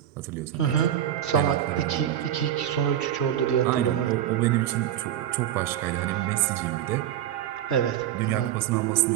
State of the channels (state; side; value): quieter; left; 11.2 dB